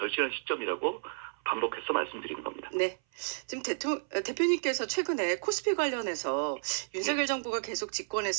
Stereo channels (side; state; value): left; silent; 56 dB below the other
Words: 시점이라고 반복해서 말씀드리는 겁니다. 네. 지금 대표님께서 최근에 코스피 관련해서 윤석열 정부가 계속